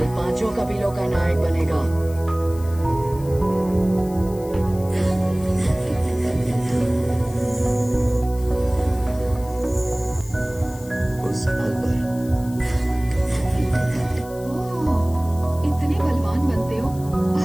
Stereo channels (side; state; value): left; noise; hiss, 20 dB below the sound